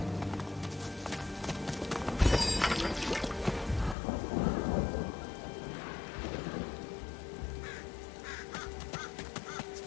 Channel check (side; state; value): right; drops out; at 4.0 s